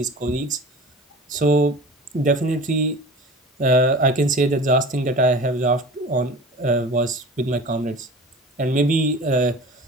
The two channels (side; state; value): both; normal; correlation 0.38